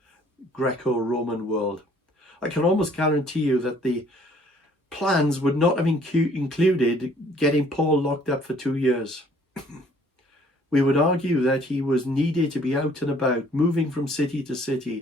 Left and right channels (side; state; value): both; normal; correlation 0.59